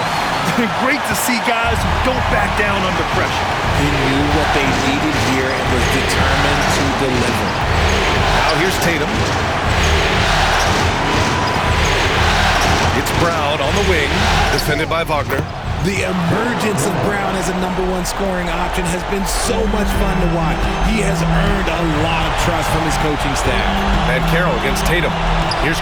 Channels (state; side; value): identical; both; correlation 1.00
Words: Great to see guys who don't back down under pressure. He knew what they needed here and was determined to deliver. Now here's Tatum. It's Brown on the wing, defended by Wagner. The emergence of Brown as a #1 scoring option has been so much fun to watch. He has earned a lot of trust from his coaching staff. Banchero against Tatum. Here's